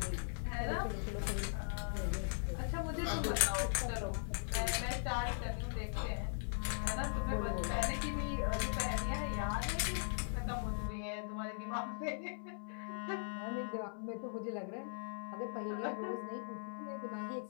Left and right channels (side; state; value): right; silent; 51 dB below the other